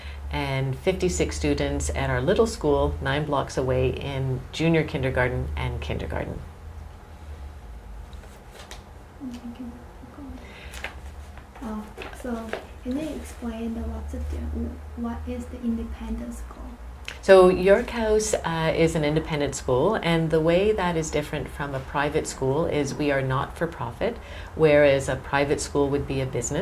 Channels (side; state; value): both; identical; correlation 1.00